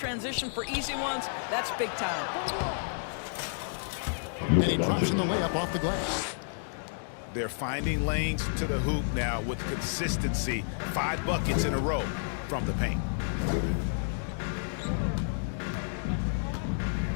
for easy ones, that's big time. And he drops in the layup off the glass. They're finding lanes to the hoop now with consistency. 5 buckets in a row from the paint.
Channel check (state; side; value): silent; right; digital silence